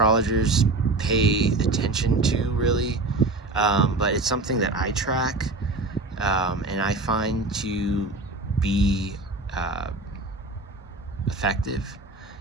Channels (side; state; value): left; quieter; 3.1 dB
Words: pay attention to, really, but it's something that I track and I find to be uh, effective